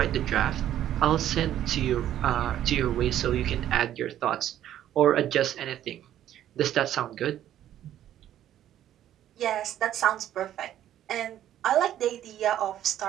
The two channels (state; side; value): quieter; left; 11.7 dB